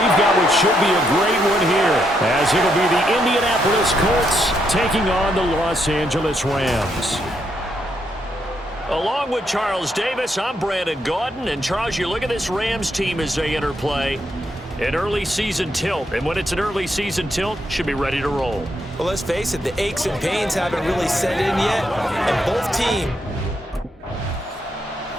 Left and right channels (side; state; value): both; normal; correlation 0.78